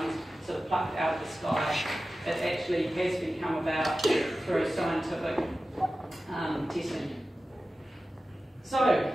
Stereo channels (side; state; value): both; normal; correlation 0.95